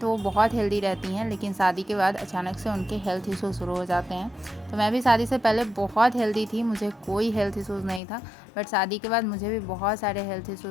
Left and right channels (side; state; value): right; drops out; at 8.0 s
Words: वो बहुत हेल्दी रहती हैं, लेकिन शादी के बाद अचानक से उनके हेल्थ इशू शुरू हो जाते हैं। तो मैं भी शादी से पहले बहुत हेल्दी थी, मुझे कोई हेल्थ इशूज़ नहीं था, बट शादी के बाद मुझे भी बहुत सारे हेल्थ